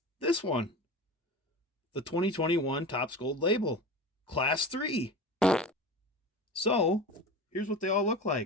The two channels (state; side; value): normal; both; correlation 0.31